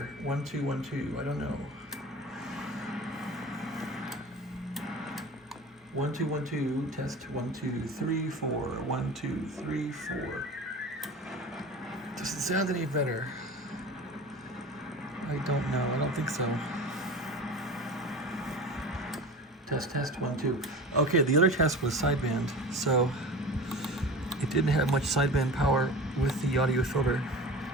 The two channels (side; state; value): both; normal; correlation 0.34